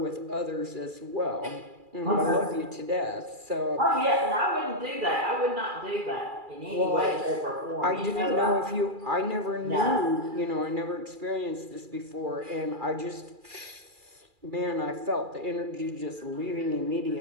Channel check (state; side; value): late; left; 2.4 ms